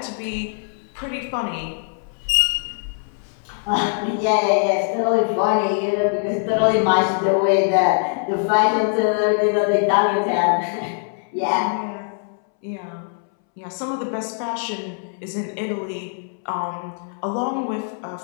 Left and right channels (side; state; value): right; silent; 64 dB below the other